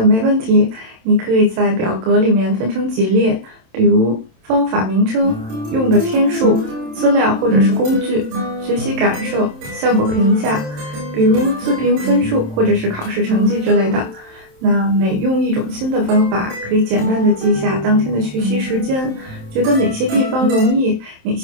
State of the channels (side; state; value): left; late; 27 ms